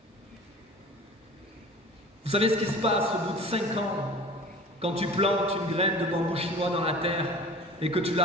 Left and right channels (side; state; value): both; normal; correlation 0.42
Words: Vous savez ce qui se passe au bout de 5 ans, quand tu plantes une graine de bambou chinois dans la terre et que tu